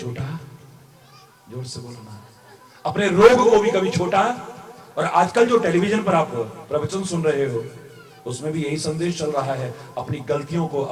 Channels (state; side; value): identical; both; correlation 1.00